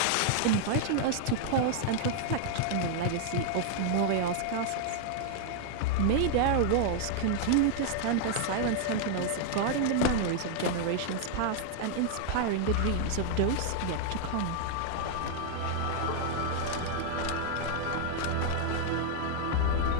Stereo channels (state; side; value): different; both; correlation -0.01